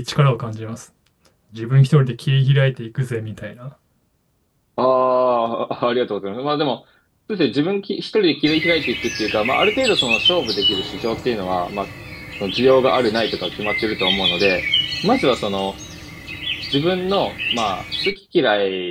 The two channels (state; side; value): identical; both; correlation 1.00